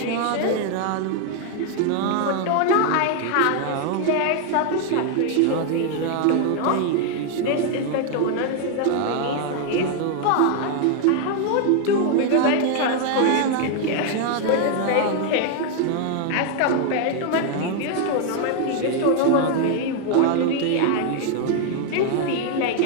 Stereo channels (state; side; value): different; both; correlation 0.00